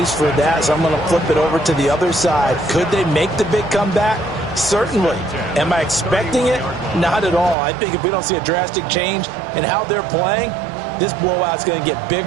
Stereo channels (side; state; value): left; drops out; at 7.6 s